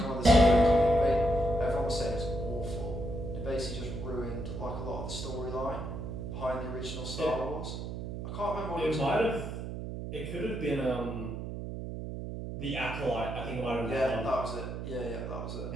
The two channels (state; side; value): noise; right; hum, 6 dB below the sound